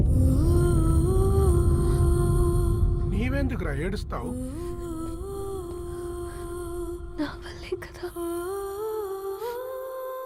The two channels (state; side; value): identical; both; correlation 1.00